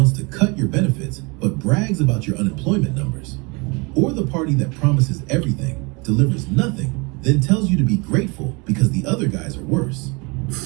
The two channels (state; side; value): quieter; left; 28.8 dB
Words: to cut your benefits but brags about your unemployment numbers. Or the party that promises everything, delivers nothing, then tells you to be grateful because the other guys are worse.